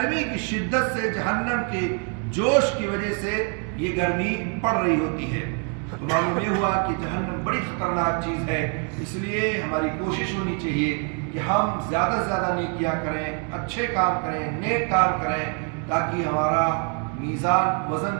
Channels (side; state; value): left; quieter; 38.0 dB